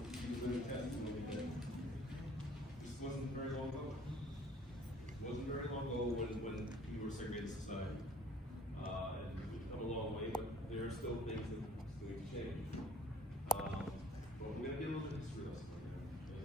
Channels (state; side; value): normal; both; correlation 0.55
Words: she was living testimony that this wasn't very long ago. It wasn't very long ago when we were a segregated society. And we've come a long way, but there are still things that still need to change. But we're going to get a little bit of history lesson